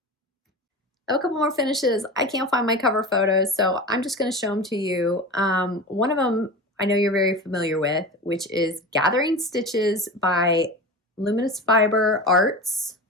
I have a couple more finishes. I can't find my cover photos, so I'm just going to show them to you. One of them I know you're very familiar with, which is Gathering Stitches by Luminous Fiber Arts.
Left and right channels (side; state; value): both; normal; correlation 0.30